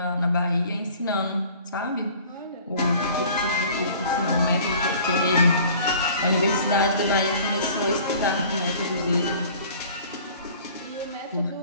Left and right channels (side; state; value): both; inverted; correlation -0.49